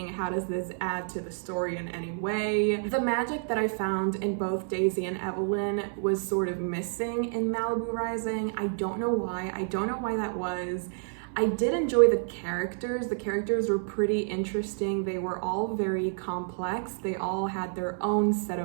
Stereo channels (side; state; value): left; silent; 58 dB below the other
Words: How does this add to the story in any way? The magic that I found in both Daisy and Evelyn was sort of missing in Malibu Rising. I don't know why. I don't know why that was. I did enjoy the characters. The characters were pretty interesting. They were all very complex. They all had their own set